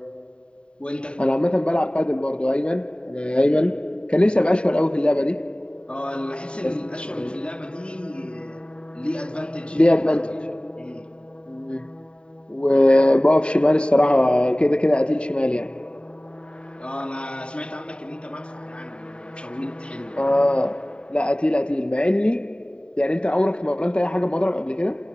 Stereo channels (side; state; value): right; late; 0.052 ms